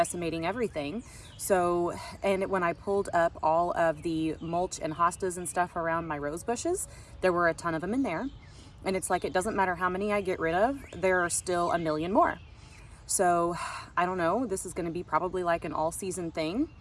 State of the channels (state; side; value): identical; both; correlation 1.00